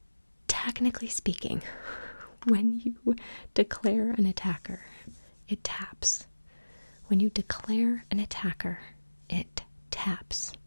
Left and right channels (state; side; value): inverted; both; correlation -1.00